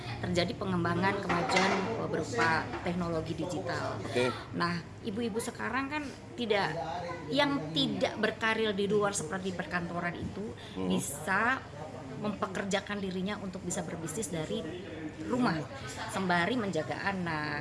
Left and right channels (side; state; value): both; identical; correlation 1.00